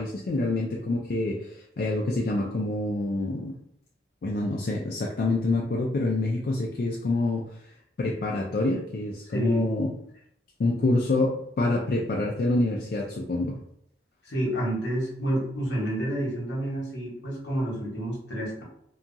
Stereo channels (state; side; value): normal; both; correlation 0.73